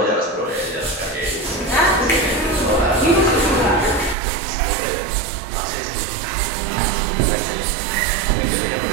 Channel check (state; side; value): drops out; left; at 4.2 s